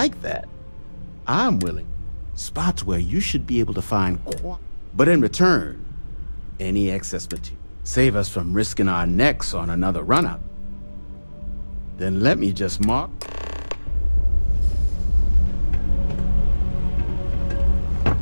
that, I'm willing. Spots where you should be able to find but in return, any excess material. Save us from risking our necks on another run-up. Then let me just mark.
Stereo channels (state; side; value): inverted; both; correlation -1.00